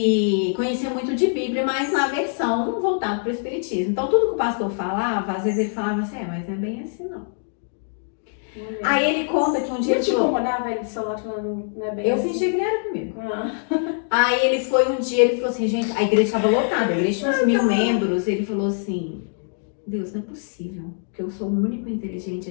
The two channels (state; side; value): silent; right; digital silence